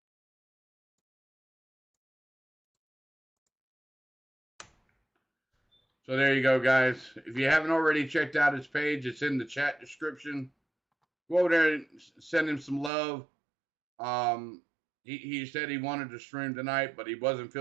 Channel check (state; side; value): drops out; left; at 12.9 s